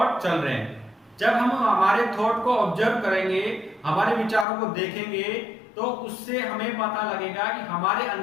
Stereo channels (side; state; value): right; drops out; at 4.5 s